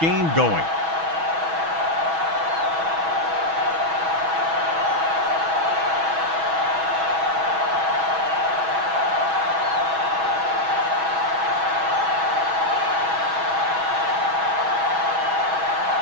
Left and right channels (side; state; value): left; late; 6.2 ms